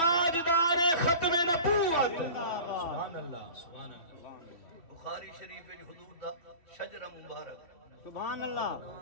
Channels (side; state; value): right; late; 3.1 ms